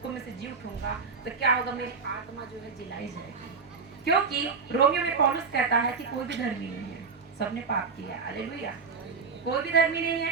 में से जी उठूंगा, तो क्या होगा, मेरी आत्मा जो है जिलाई जाएगी। क्योंकि रोमियो में पौलुस कहता है कि कोई भी धर्मी नहीं है, सबने पाप किया। हालेलुया। कोई भी धर्मी नहीं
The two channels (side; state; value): left; quieter; 5.2 dB